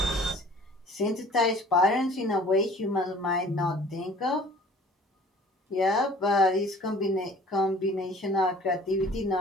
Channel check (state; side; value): normal; both; correlation 0.50